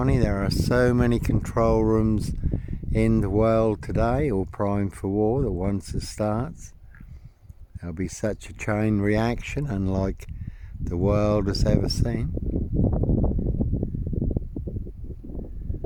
there are so many control rooms in the world today, all primed for war, that once it starts, there'll be such a chain reaction unlike the world has ever seen.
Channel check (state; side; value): identical; both; correlation 1.00